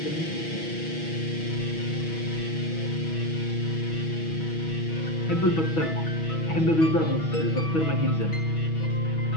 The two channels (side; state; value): right; late; 6.2 ms